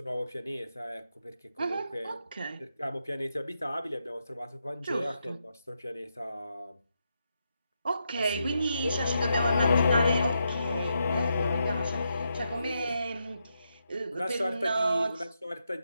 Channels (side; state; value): both; inverted; correlation -0.83